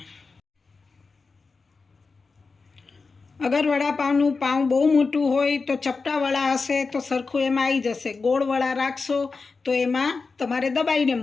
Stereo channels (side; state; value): right; quieter; 4.4 dB